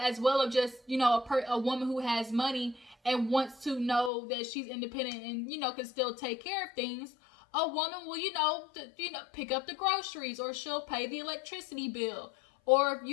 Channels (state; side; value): drops out; right; at 4.1 s